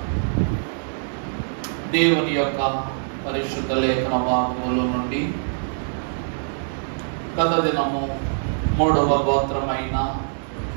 దేవుని యొక్క పరిశుద్ధ లేఖన భాగముల నుండి గత దినము 3వ గోత్రమైన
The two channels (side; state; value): left; silent; digital silence